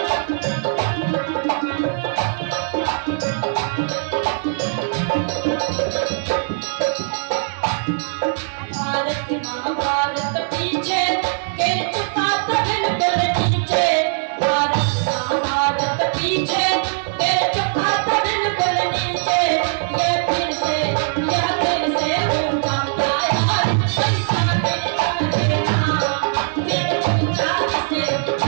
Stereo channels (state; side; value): silent; left; 65 dB below the other